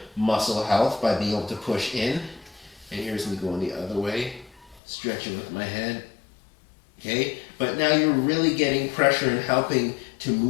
muscle health by being able to push in. And here's me going the other way, stretching with my head. Okay, but now you're really getting pressure and helping to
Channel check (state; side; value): drops out; right; at 4.8 s